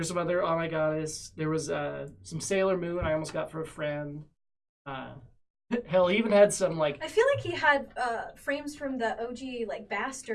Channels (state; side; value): identical; both; correlation 1.00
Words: some other Oh My Goddess. There was some Sailor Moon I almost got for a friend. Hell, he even had some like I feel like he had frames from the OG like